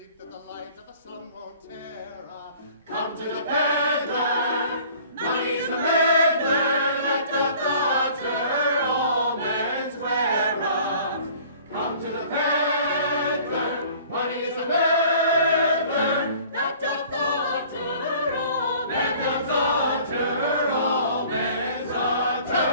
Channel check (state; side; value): inverted; both; correlation -0.50